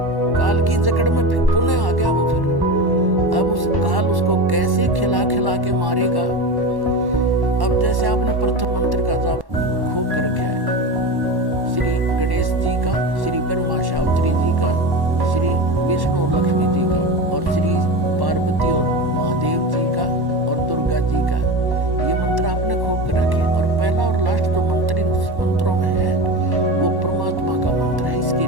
काल की जकड़ में पुनः आ गया वो। फिर अब उस काल उसको कैसे खिला खिला के मारेगा। अब जैसे आपने प्रथम मंत्र का जाप खूब कर रखा है, श्री गणेश जी का, श्री ब्रह्मा शास्त्री जी का, श्री विष्णु और लक्ष्मी जी का, और श्री पार्वती और महादेव जी का, और दुर्गा जी का, ये मंत्र आपने खूब कर रखे। और पहला और लास्ट जो मंत्र इन मंत्रों में है वो परमात्मा का मंत्र है। इसके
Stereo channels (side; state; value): left; late; 1.1 ms